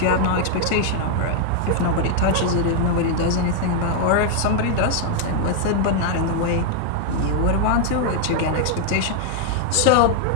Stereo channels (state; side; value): different; both; correlation 0.00